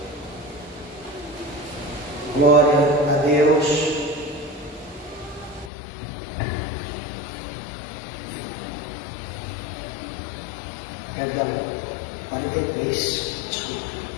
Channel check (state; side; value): drops out; right; at 5.7 s